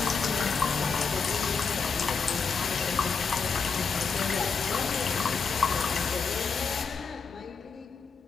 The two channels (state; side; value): quieter; right; 5.3 dB